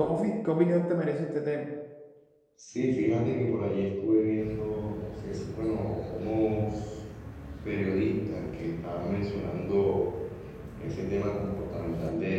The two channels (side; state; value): both; identical; correlation 1.00